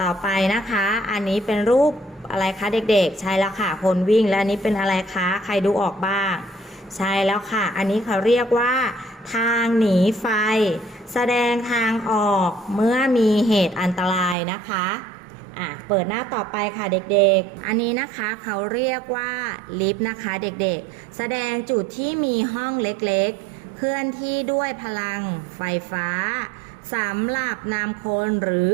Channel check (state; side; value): drops out; left; at 14.4 s